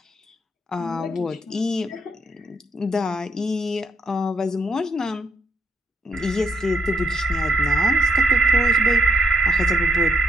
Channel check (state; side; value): normal; both; correlation 0.73